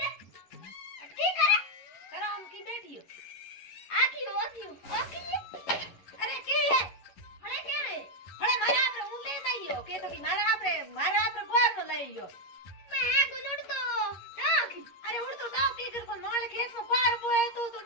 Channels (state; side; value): late; right; 11 ms